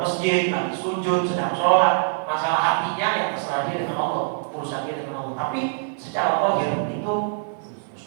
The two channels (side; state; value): left; silent; 57 dB below the other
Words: masjid, lagi sujud, sedang sholat, masalah hatinya yang terserah dia dengan Allah, urusan dia dengan Allah. Tapi secara zahir itu